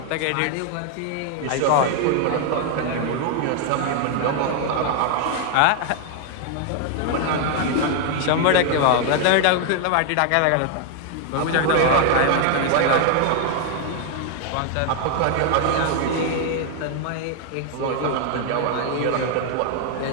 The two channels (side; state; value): both; different; correlation 0.00